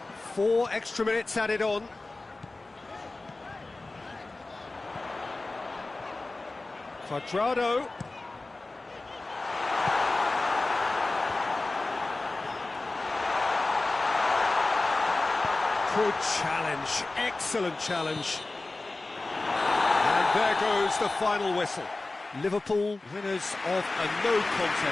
4 extra minutes added on. Cuadrado. Good challenge, excellent challenge. And there goes the final whistle. Liverpool, winners of a no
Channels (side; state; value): right; quieter; 3.2 dB